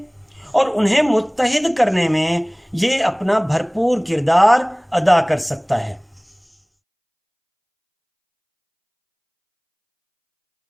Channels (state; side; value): identical; both; correlation 1.00